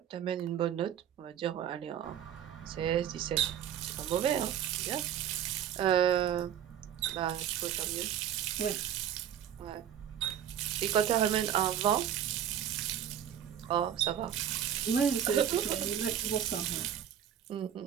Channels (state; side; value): quieter; left; 9.7 dB